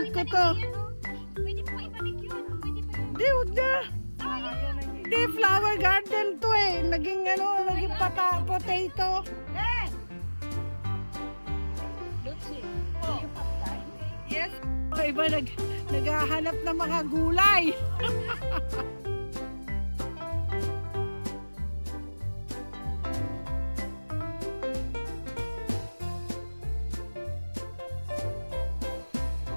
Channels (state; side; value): inverted; both; correlation -1.00